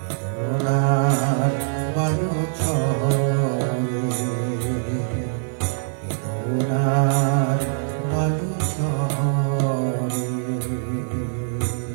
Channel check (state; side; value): silent; left; digital silence